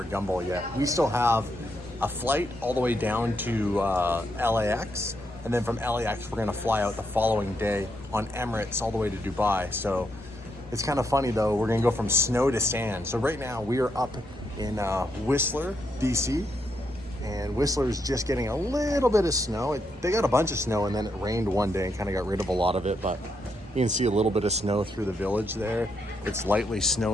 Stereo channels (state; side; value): normal; both; correlation 0.79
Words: Gumball yet. We still have a flight all the way down to LAX, and then from LAX we're going to fly out the following day on Emirates all the way to Dubai. So it's kind of funny though, we're going to go from snow to sand. So right now we are up in Whistler, DC. And Whistler's just getting a little bit of snow. They got a bunch of snow and then it rained one day and kind of got rid of a lot of it, but you can see a little bit of snow through the village there. It's lightly